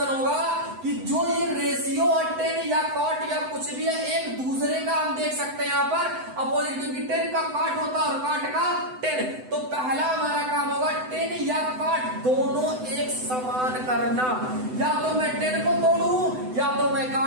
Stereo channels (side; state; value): left; late; 7.9 ms